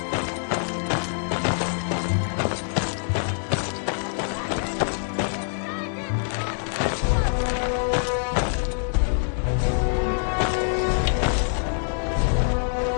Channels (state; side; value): silent; right; digital silence